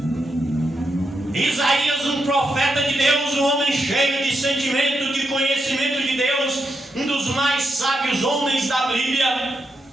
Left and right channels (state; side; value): normal; both; correlation 0.84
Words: Isaías, um profeta de Deus, um homem cheio de sentimento, de conhecimento de Deus, um dos mais sábios homens da Bíblia,